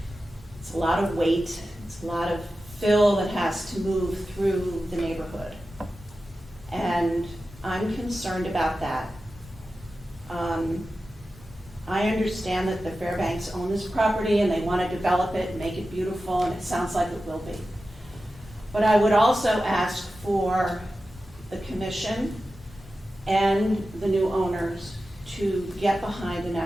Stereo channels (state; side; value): normal; both; correlation 0.93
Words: it's a lot of weight, it's a lot of fill that has to move through the neighborhood. And I'm concerned about that. I understand that the Fairbanks own this property and they want to develop it and make it beautiful, and it sounds like it will be. But I would also ask for the commission and the new owners to get behind an